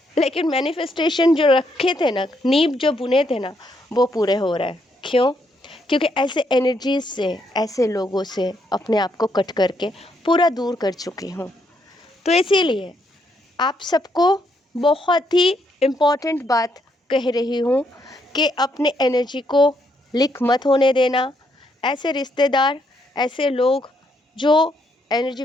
लेकिन मैनिफेस्टेशन जो रखे थे ना, नींव जो बुने थे ना, वो पूरे हो रहा है। क्यों? क्योंकि ऐसे एनर्जीज से, ऐसे लोगों से अपने आप को कट करके पूरा दूर कर चुकी हूँ। तो इसीलिए आप सबको बहुत ही इम्पोर्टेंट बात कह रही हूँ कि अपने एनर्जी को लीक मत होने देना। ऐसे रिश्तेदार, ऐसे लोग जो एनर्जी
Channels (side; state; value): both; normal; correlation 0.75